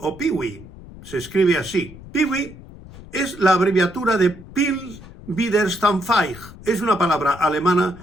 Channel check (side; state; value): left; noise; rumble, 17 dB below the sound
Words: Piwi, se escribe así. Piwi es la abreviatura de Pils Widerstandsfähig. Es una palabra